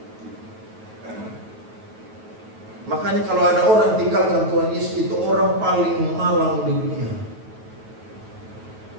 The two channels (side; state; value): left; late; 9.2 ms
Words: Makanya kalau ada orang tinggalkan Tuhan Yesus, itu orang paling malang di dunia.